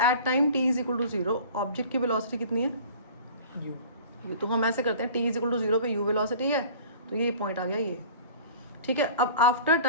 at time t is equal to 0 object की वेलोसिटी कितनी है? u। तो हम ऐसे करते हैं, t इज इक्वल टू 0 पे u वेलोसिटी है, तो ये पॉइंट आ गया ये। ठीक है, अब आफ्टर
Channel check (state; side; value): inverted; both; correlation -0.43